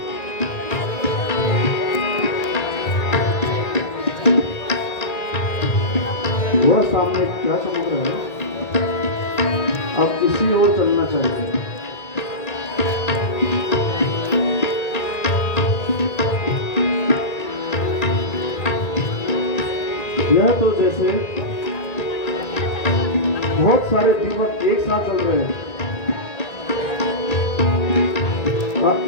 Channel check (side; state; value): right; late; 1.8 ms